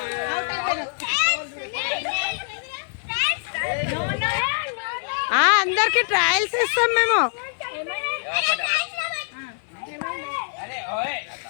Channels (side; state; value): right; silent; digital silence